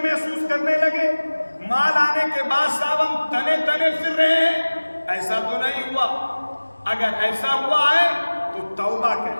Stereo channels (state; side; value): inverted; both; correlation -1.00